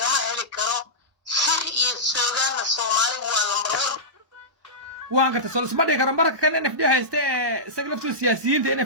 هلي كرو سر يسوعان الصومالي والمرور واقرت سولس ما ديكر مرة كان NFD هايست سجلفتو السياسيين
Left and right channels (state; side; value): late; left; 1.0 ms